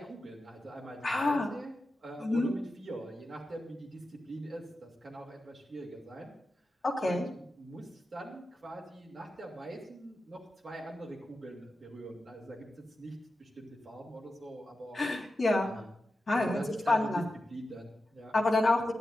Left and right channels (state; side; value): normal; both; correlation 0.91